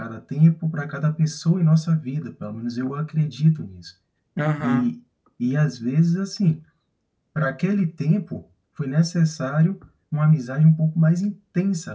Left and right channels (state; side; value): identical; both; correlation 1.00